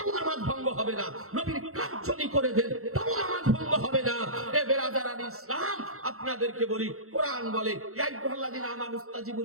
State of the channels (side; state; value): left; late; 0.63 ms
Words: নামাজ ভঙ্গ হবে না। নবীর কাজ যদি করে দেন, তাও নামাজ ভঙ্গ হবে না। এ বেরাদারান ইসলাম, আপনাদেরকে বলি, কোরআন বলে, ইয়া আইয়ুহাল্লাযীনা আমানু ইসতাজিবু